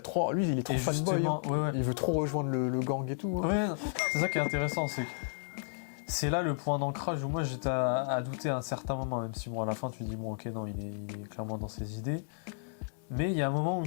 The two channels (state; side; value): silent; right; digital silence